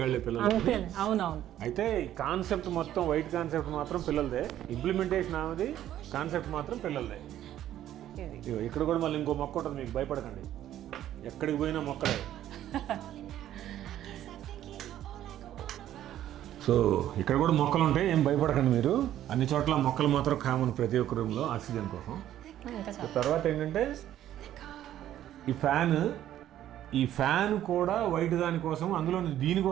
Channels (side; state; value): left; quieter; 12.1 dB